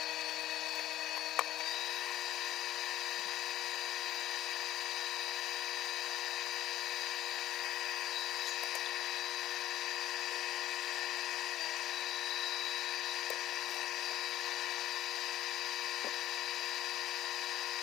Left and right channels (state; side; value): quieter; right; 13.7 dB